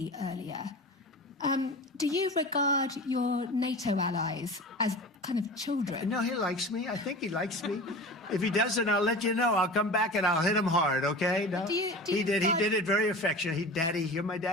earlier. Do you regard your NATO allies as kind of children? No, he likes me. I think he likes me. If he doesn't, I'll let you know. I'll come back and I'll hit him hard, okay? No? He did it very affectionate. Daddy, you're my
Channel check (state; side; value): normal; both; correlation 0.34